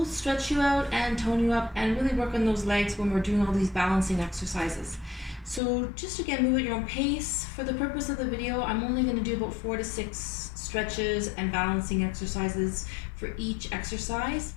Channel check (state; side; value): drops out; right; at 5.6 s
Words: stretch you out and tone you up and really work on those legs when we're doing all these balancing exercises. So just again, move at your own pace. For the purpose of the video, I'm only going to do about 4 to 6 stretches and balancing exercises for each exercise.